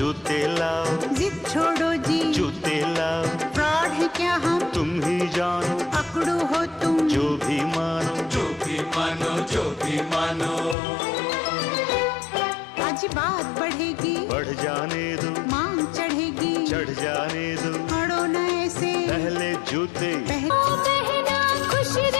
लाओ, जिद छोड़ो जी, जूते लाओ, फ्रॉड है क्या हम तुम ही जानो, अकड़ू हो तुम जो भी मानो, जो भी मानो, जो भी मानो। आज बात बढ़ेगी, बढ़ जाने दो, मांग चढ़ेगी, चढ़ जाने दो, अड़ो न ऐसे, पहले जूते पहले बहना खुश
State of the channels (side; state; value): right; drops out; at 10.8 s